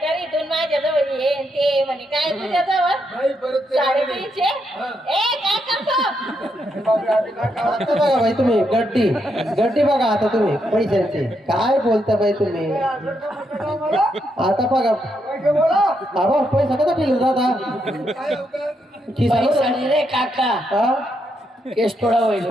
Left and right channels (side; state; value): both; normal; correlation 0.80